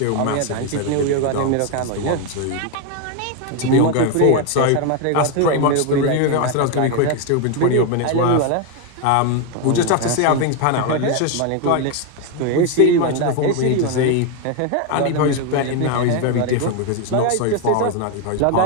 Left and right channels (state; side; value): different; both; correlation 0.01